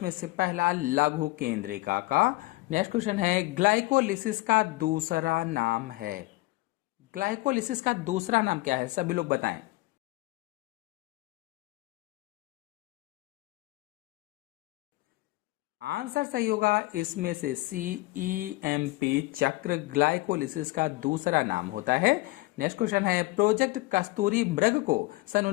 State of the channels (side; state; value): right; quieter; 21.2 dB